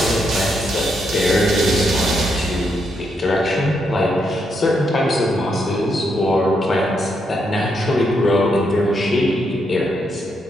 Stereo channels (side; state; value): both; normal; correlation 0.79